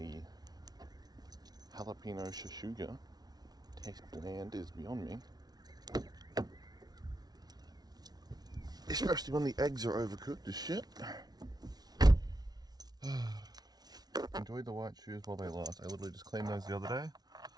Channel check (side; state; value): left; late; 0.19 ms